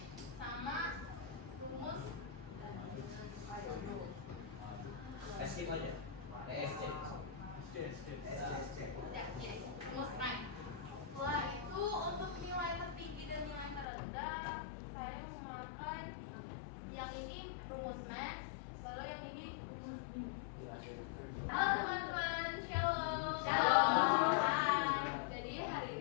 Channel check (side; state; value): right; drops out; at 13.9 s